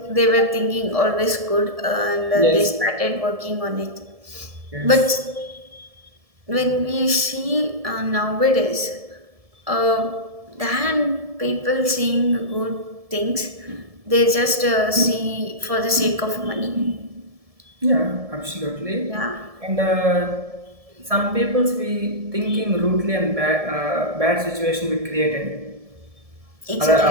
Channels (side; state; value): left; late; 1.7 ms